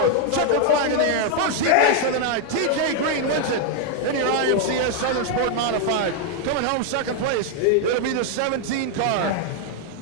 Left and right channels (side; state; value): both; different; correlation 0.00